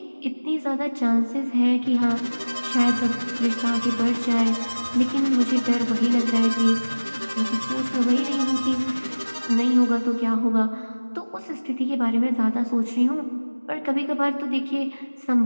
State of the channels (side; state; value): both; inverted; correlation -1.00